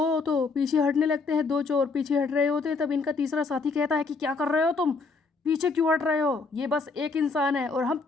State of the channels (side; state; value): right; quieter; 4.2 dB